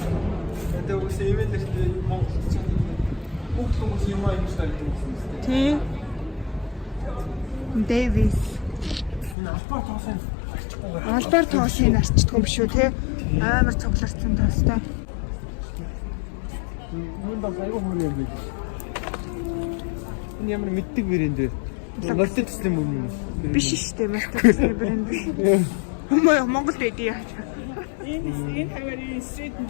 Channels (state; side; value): drops out; right; at 9.3 s